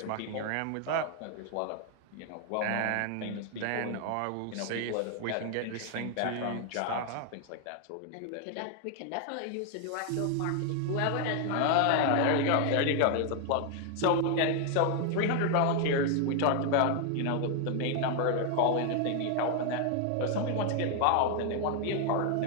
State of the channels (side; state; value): both; different; correlation 0.00